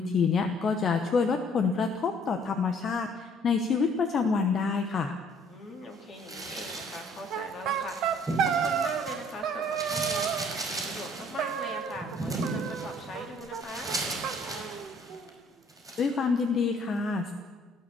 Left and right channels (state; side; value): normal; both; correlation 0.59